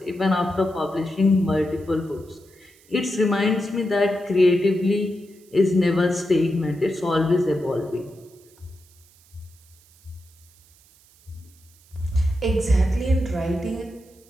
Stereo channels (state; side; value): noise; right; hiss, 29 dB below the sound